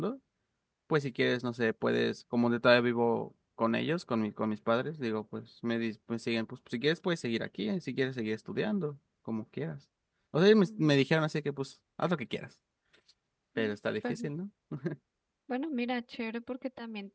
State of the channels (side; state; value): both; identical; correlation 1.00